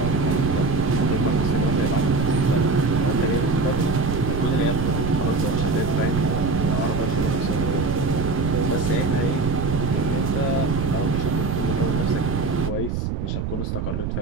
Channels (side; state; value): right; noise; rumble, 2 dB below the sound